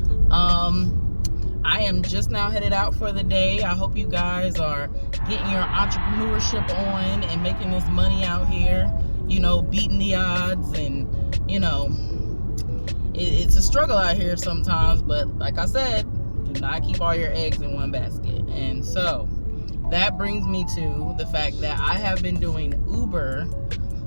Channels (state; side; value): inverted; both; correlation -1.00